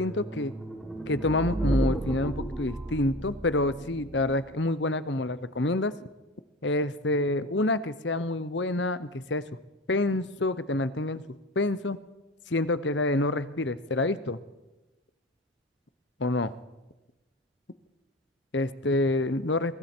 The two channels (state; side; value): normal; both; correlation 0.32